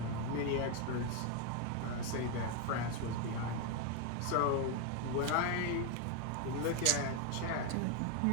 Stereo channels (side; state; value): both; different; correlation 0.01